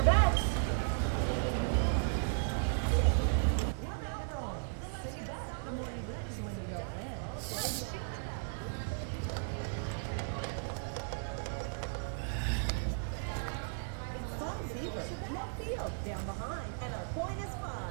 bets. No field down behind, and our point is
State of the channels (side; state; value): left; silent; digital silence